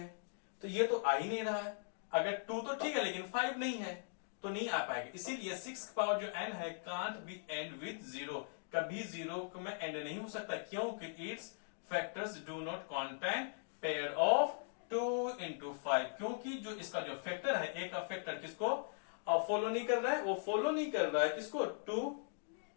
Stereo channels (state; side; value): silent; right; digital silence